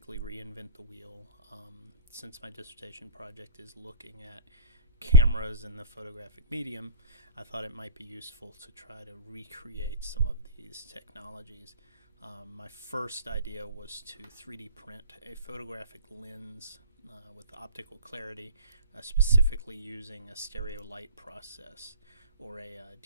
reinvent the wheel. Since my dissertation project is looking at cameras in the photographic medium, I thought it might be useful to try to recreate some of these technologies. My first idea was to 3D print a photographic lens with optical clarity, specifically using a stereo light process or a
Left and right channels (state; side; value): inverted; both; correlation -0.43